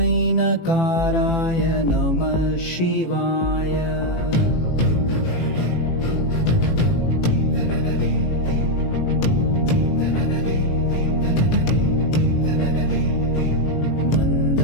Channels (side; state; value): right; late; 18 ms